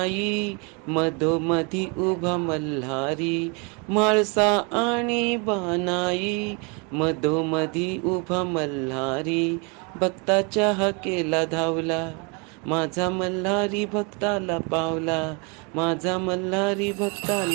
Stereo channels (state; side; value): quieter; left; 33.0 dB